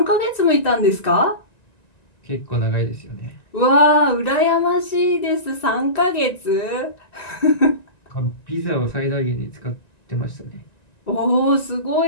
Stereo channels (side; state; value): right; late; 1.9 ms